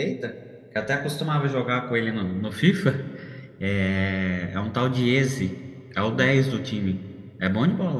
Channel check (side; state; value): both; identical; correlation 1.00